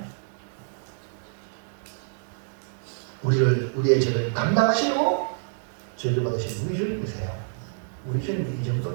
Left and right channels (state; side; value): silent; left; digital silence